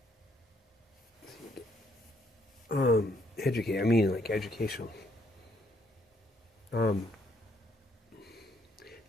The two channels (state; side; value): normal; both; correlation 0.71